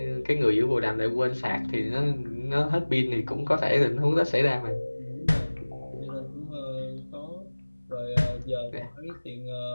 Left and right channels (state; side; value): inverted; both; correlation -1.00